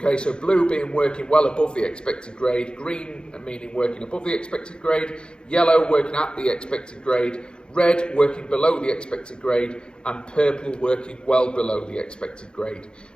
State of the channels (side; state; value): right; late; 0.050 ms